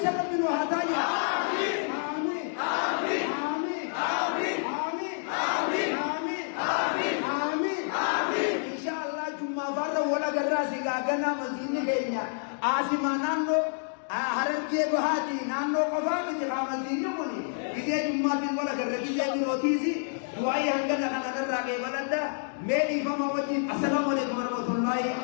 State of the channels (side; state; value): right; silent; digital silence